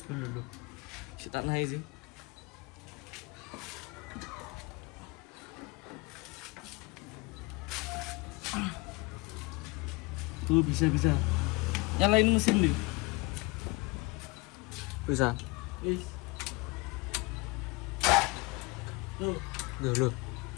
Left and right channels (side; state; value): right; quieter; 25.1 dB